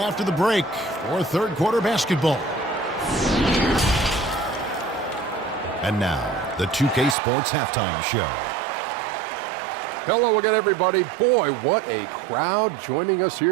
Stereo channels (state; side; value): drops out; left; at 7.2 s